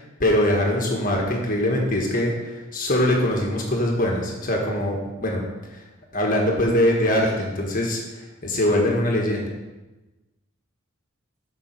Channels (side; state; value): both; normal; correlation 0.39